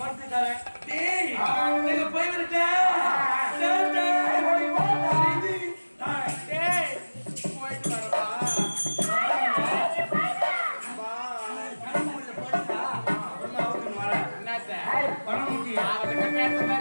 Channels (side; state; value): both; inverted; correlation -1.00